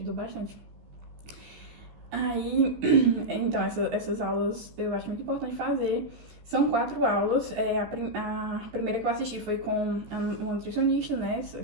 bastante. Aí, então, essas aulas eu acho muito importante fazer. São 4 aulas. A primeira que eu assisti foi com uma nutricionista, né,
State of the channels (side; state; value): left; late; 15 ms